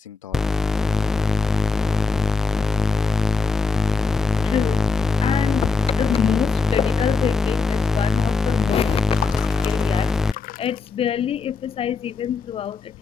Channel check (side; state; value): right; quieter; 4.6 dB